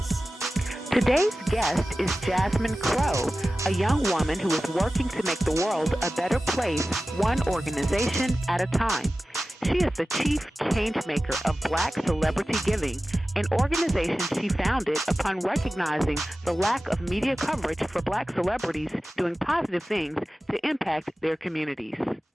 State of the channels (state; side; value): normal; both; correlation 0.95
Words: Today's guest is Jasmine Crowe, a young woman who is working to make the world a better place, one organization at a time. She is the chief changemaker of Black Celebrity Giving, an organization she founded upon recognizing the lack of media coverage for Black celebrities doing positive things to impact their communities.